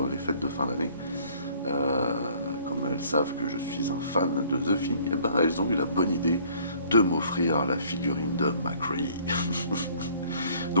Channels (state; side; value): inverted; both; correlation -0.57